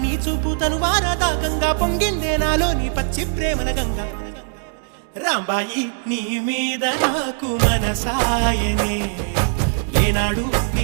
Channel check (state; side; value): silent; left; digital silence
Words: చూపు తను వారదాకంగా పొంగిందే నాలో నీ పచ్చి ప్రేమల గంగా రాంబాయి నీ మీద నాకు మనసాయనే ఏనాడు